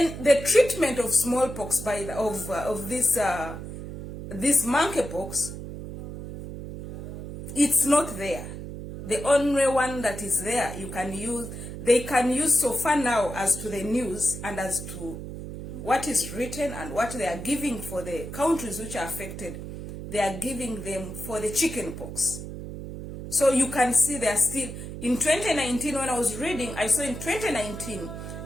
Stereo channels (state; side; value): noise; right; hum, 9 dB below the sound